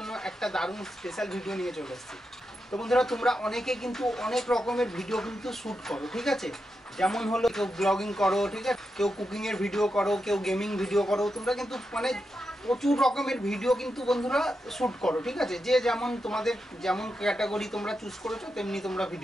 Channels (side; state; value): both; normal; correlation 0.87